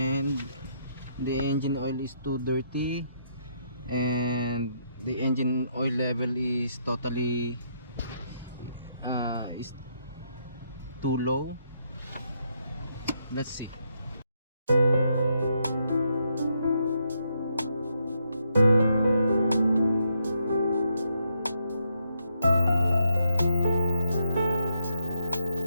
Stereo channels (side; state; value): both; inverted; correlation -0.77